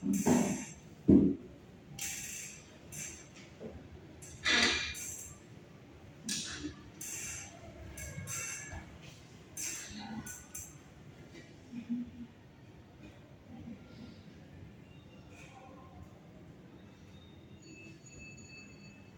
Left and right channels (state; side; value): identical; both; correlation 1.00